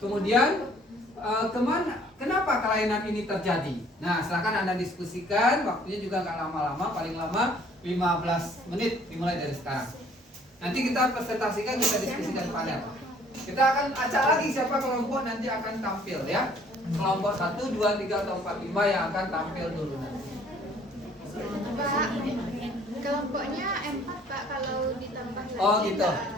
kemudian kenapa kelainan ini terjadi. Nah, silakan Anda diskusikan, waktunya juga nggak lama-lama, paling lama 15 menit dimulai dari sekarang. Nanti kita presentasikan, kita diskusikan panel. Kita akan acak lagi siapa kelompok nanti akan tampil ya. Kelompok 1, 2, 3, atau 4, 5 yang akan tampil dulu nanti. Pak, kelompoknya 4 Pak, kalau ditambah lagi. Oh gitu,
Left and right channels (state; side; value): normal; both; correlation 0.58